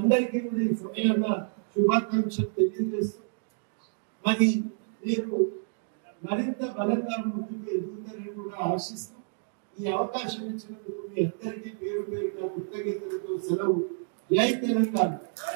కూడా ఈ సమయంలో శుభాకాంక్షలు తెలియజేస్తూ మరి మీరు మరింత బలంగా ముందుకు ఎదుగుతారని కూడా ఆశిస్తూ ఈ అవకాశం ఇచ్చినందుకు మీ అందరికీ పేరు పేరుగా కృతజ్ఞతలతో సెలవు. జై తెలంగాణ,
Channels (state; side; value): silent; left; 58 dB below the other